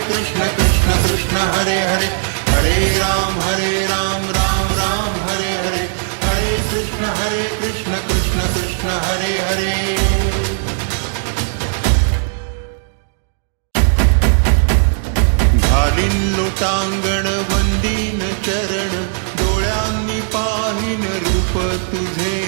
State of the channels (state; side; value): silent; left; digital silence